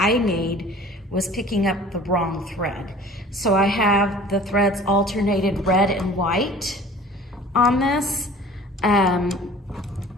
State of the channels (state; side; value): normal; both; correlation 0.46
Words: made, was picking up the wrong thread. So I have the threads alternated red and white on this.